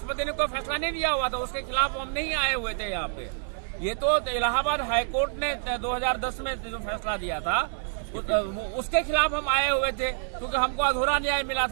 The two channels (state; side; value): silent; left; 60 dB below the other